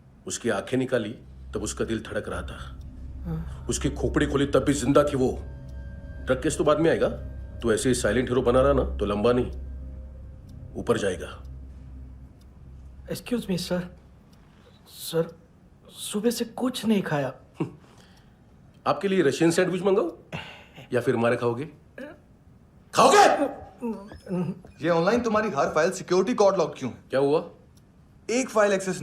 उसकी आंखें निकाली तब उसका दिल धड़क रहा था। उसकी खोपड़ी खोली तब भी जिंदा थी वो। ड्रग केस तो बाद में आएगा। तो ऐसे ही साइलेंट हीरो बना रहा ना तो लंबा नहीं, ऊपर जाएगा। एक्सक्यूज मी सर, सर सुबह से कुछ नहीं खाया। आपके लिए रशियन सैंडविच मंगाओ या फिर हमारे खाओगे? खाओगे? ये ऑनलाइन तुम्हारी हर फाइल सिक्योरिटी कोड लॉक क्यों है? क्या हुआ? एक फाइल एक्सेस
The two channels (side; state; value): both; identical; correlation 1.00